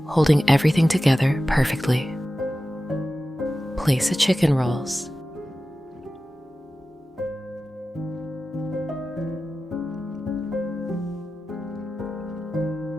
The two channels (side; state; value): both; normal; correlation 0.94